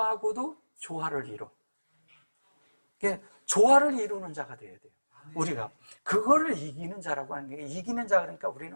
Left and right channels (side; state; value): both; inverted; correlation -1.00